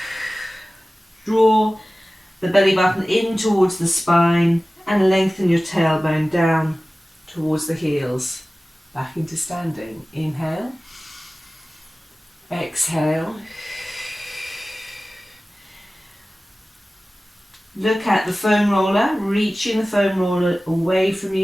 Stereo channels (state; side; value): normal; both; correlation 0.97